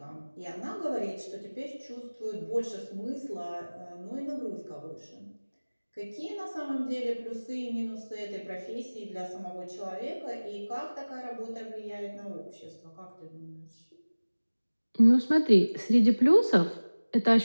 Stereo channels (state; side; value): inverted; both; correlation -1.00